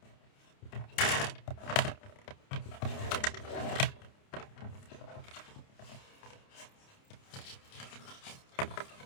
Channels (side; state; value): right; late; 29 ms